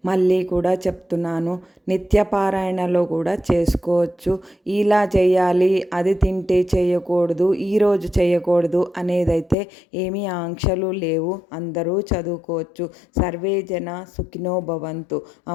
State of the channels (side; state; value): right; drops out; at 9.6 s